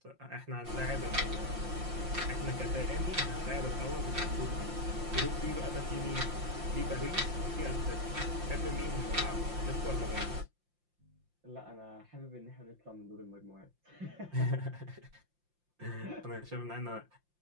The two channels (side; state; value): left; late; 5.7 ms